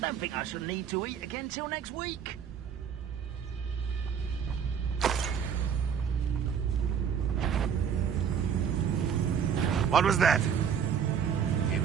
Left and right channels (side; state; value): left; quieter; 7.7 dB